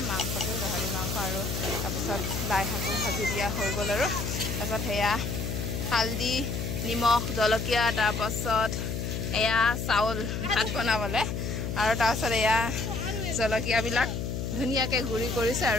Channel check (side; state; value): left; noise; hum, 3 dB below the sound